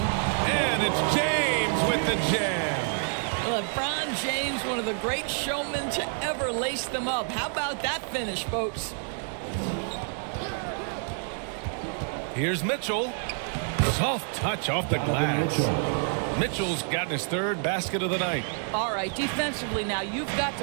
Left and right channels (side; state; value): left; silent; 55 dB below the other